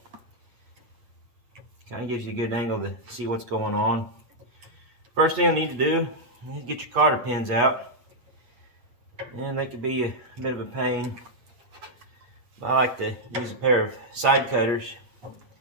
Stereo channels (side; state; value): left; late; 8.3 ms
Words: kind of gives you a good angle to see what's going on. First thing you need to do is get your cotter pins out, and they could be a bit of a pain. I like to use a pair of side cutters